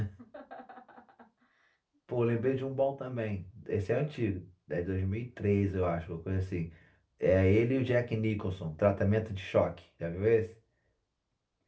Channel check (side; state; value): both; identical; correlation 1.00